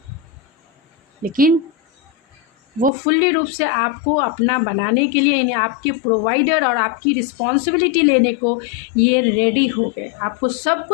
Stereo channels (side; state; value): right; drops out; at 2.9 s